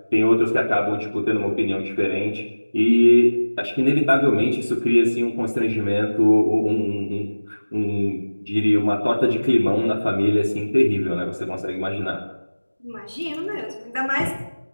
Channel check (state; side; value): inverted; both; correlation -1.00